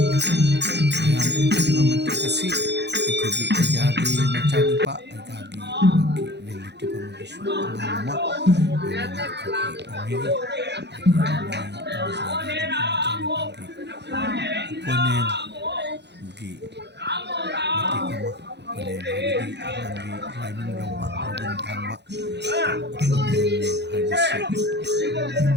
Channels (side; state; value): left; late; 0.50 ms